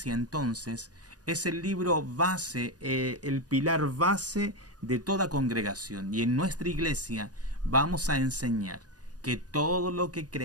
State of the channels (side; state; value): left; late; 0.68 ms